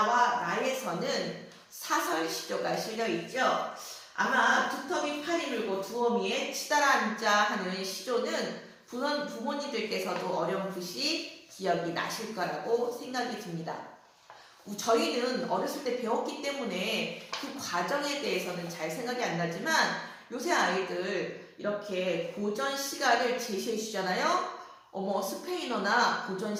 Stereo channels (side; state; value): both; identical; correlation 1.00